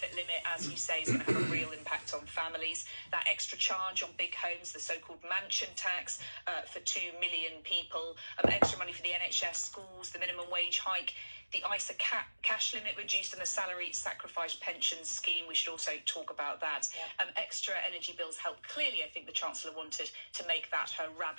limit, as you say, is going to have a real impact on families. That extra charge on big homes, the so-called mansion tax for 2 million people, extra money for the NHS, schools, the minimum wage hike, the ISA cash limit reduced, and the salary sacrifice pension scheme. We should also talk about that. Extra energy bills help. Clearly, I think the Chancellor wanted to make that her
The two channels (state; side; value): inverted; both; correlation -1.00